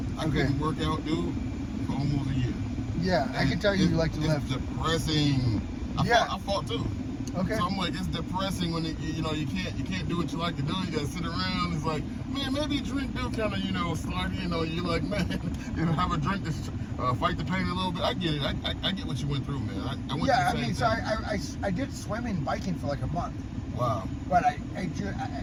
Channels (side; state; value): both; identical; correlation 1.00